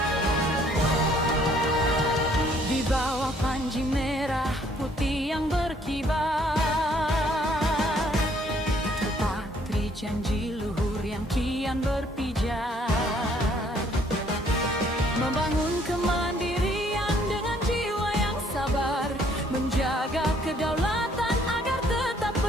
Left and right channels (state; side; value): normal; both; correlation 0.63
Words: bawah panji merah putih yang berkibar, terpatri janji luhur yang kian berpijar, membangun kemandirian dengan jiwa yang sabar, menjaga kedaulatan agar tetap